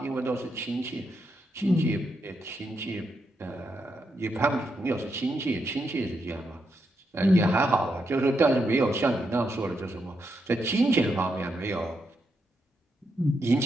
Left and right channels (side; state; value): both; normal; correlation 0.82